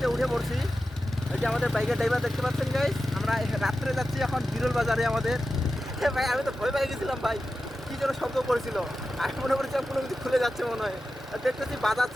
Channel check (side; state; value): both; normal; correlation 0.92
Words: উঠে পড়ছি। এই যে আমাদের বাইকের ড্রাইভার দেখতে পাচ্ছেন গাইস, আমরা রাত্রে যাচ্ছি এখন বিরল বাজারে আমাদের। ভাই আমি তো ভয় পেয়ে গেছিলাম ভাই, কি যেন শব্দ করেছিল, আমি মনে করছিলাম কোনো কিছু খুলে যাচ্ছে মনে হয়। আর দেখতেছি